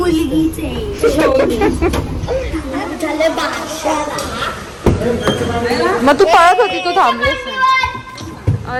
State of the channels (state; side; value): identical; both; correlation 1.00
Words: आहे. झाले बादशाला. मग तू पळत होती, तू थांबलीस नाही.